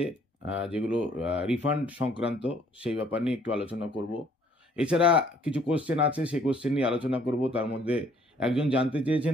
যেগুলো রিফান্ড সংক্রান্ত, সেই ব্যাপার নিয়ে একটু আলোচনা করব। এছাড়া কিছু কোশ্চেন আছে, সেই কোশ্চেন নিয়ে আলোচনা করব। তার মধ্যে একজন জানতে চেয়েছেন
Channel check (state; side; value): normal; both; correlation 0.61